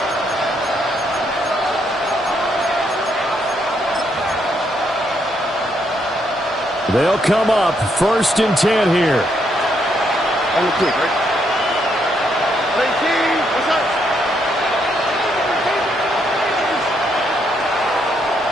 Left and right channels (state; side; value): normal; both; correlation 0.75